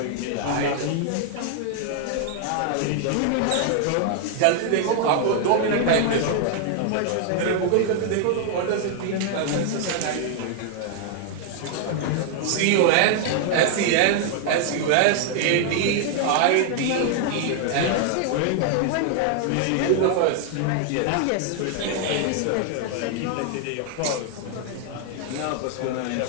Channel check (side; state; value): both; different; correlation 0.00